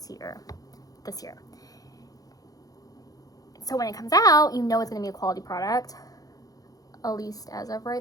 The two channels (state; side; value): late; right; 0.18 ms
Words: year. So when it comes out, you know it's going to be a quality product. At least as of